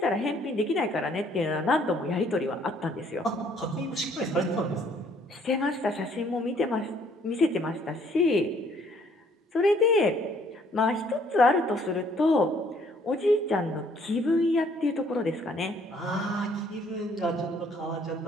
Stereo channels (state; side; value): normal; both; correlation 0.62